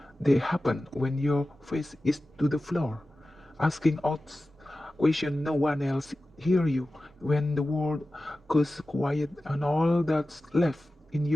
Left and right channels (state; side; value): normal; both; correlation 0.95